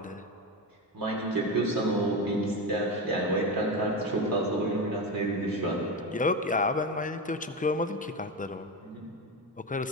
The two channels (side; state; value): both; normal; correlation 0.18